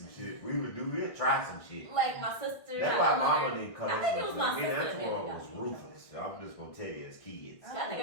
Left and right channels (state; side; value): late; right; 1.8 ms